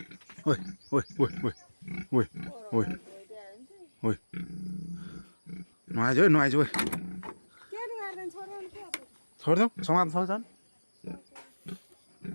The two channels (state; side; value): inverted; both; correlation -1.00